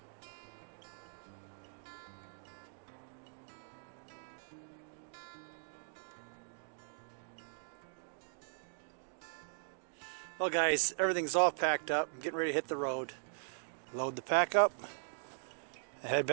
Well guys, everything's all packed up. I'm getting ready to hit the road. Load the pack up and head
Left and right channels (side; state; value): left; silent; digital silence